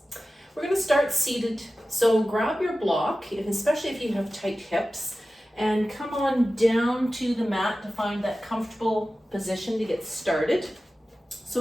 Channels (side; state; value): both; normal; correlation 0.95